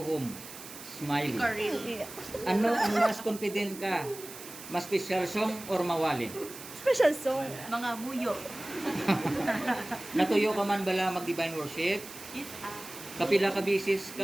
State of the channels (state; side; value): noise; right; hiss, 14 dB below the sound